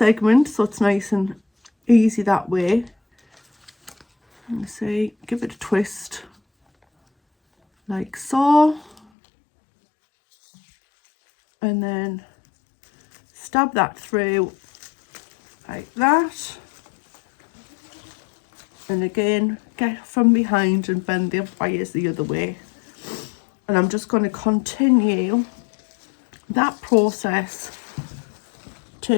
so it's nice and easy that way. And see, give it a twist, like so. And then stab that through, like that. And again, get from behind and bend the wires the other way. And I'm just going to continue that process.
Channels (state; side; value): drops out; right; at 9.0 s